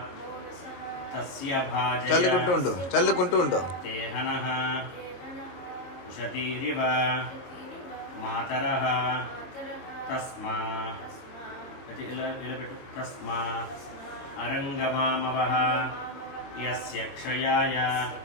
తస్య భాజయ చల్లుకుంటూ ఉండు. తేహనః ఉషతీరివ మాతరః తస్మా తస్మా అరంగమామవః యస్య క్షయాయ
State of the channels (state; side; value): late; right; 22 ms